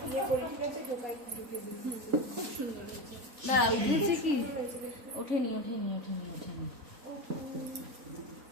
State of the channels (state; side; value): late; left; 3.5 ms